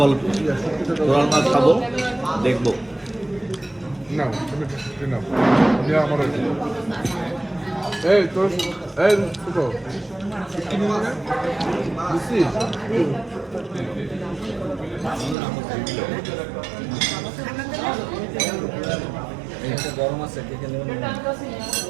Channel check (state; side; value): drops out; left; at 15.4 s